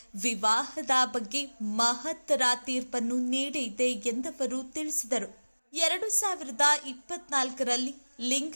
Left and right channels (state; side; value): inverted; both; correlation -1.00